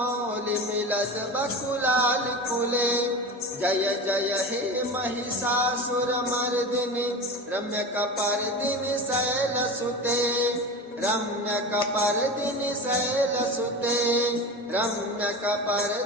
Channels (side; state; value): both; normal; correlation 0.29